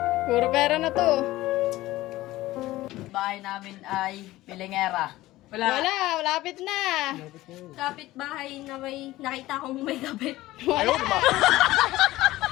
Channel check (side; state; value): right; quieter; 17.1 dB